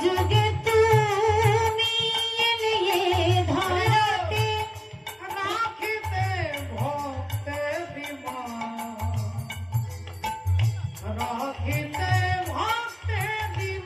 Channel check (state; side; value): identical; both; correlation 1.00